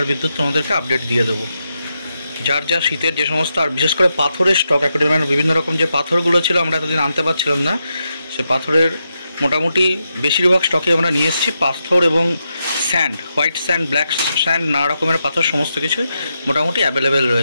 আর বিদ্যুৎ তোমাদেরকে আপডেট দিয়ে দেবো। যার যা শীতের যে সমস্ত, আর বিশেষ করে পাথরের স্টক, অ্যাকোয়ারিয়ামের বিভিন্ন রকম যে পাথরগুলো ছিল আমরা এতদিন আনতে পারছিলাম না, সে পাথরের মোটামুটি বেশিরভাগ স্টকে আমরা নিয়ে এসেছি। পাথর এবং sand, white sand, black sand, নানা রকমের পাথর সমস্ত কিছুই মোটামুটি অ্যাভেলেবেল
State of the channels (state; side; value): inverted; both; correlation -0.85